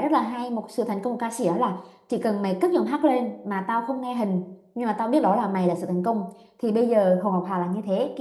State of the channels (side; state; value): both; identical; correlation 1.00